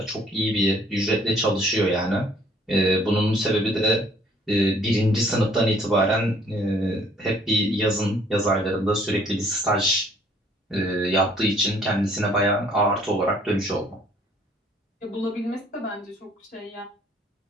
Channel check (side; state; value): both; normal; correlation 0.60